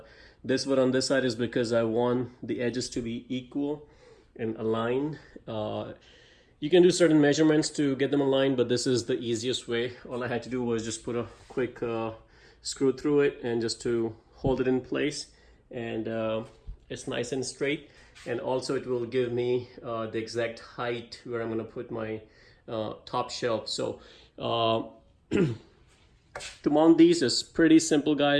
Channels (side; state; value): both; identical; correlation 1.00